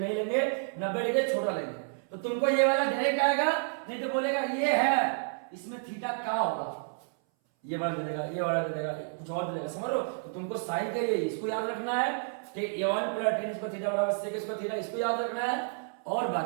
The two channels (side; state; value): left; silent; 58 dB below the other